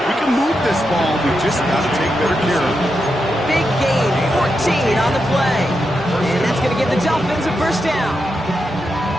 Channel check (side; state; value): both; normal; correlation 0.86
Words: we can move this ball. We just got to take better care of it. Big gain, 14 on the play. And that's going to give the Dolphins a 1st down.